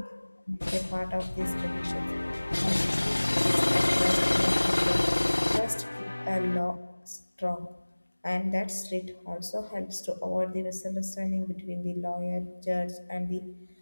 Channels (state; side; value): inverted; both; correlation -1.00